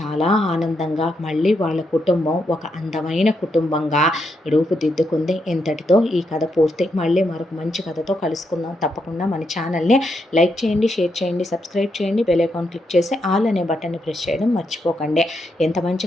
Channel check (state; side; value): normal; both; correlation 0.81